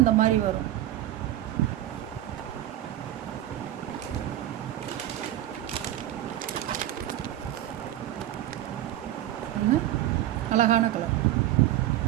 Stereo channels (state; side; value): quieter; left; 13.3 dB